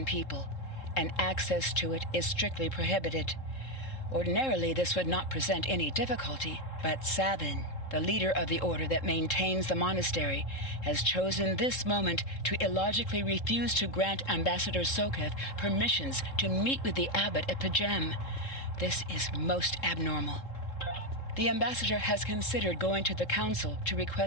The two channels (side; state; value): right; late; 3.7 ms